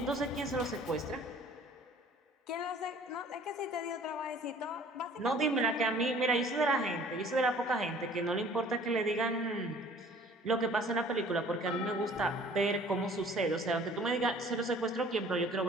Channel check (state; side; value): normal; both; correlation 0.52